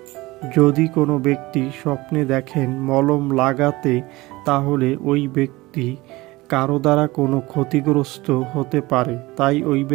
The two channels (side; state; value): left; quieter; 20.6 dB